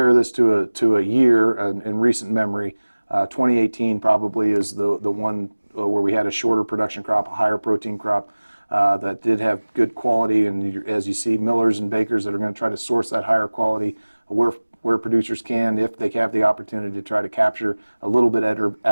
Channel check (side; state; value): both; inverted; correlation -1.00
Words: this to a year in recent memory, 2018 probably is the one where we had a shorter production crop, a higher protein crop that did have good quality. And as you see, millers and bakers that are going to try to source that higher quality where producers can, if they have the opportunity to try to capture a little bit